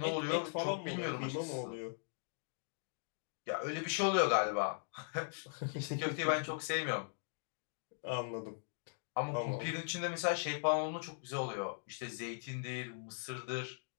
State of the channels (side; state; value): right; silent; digital silence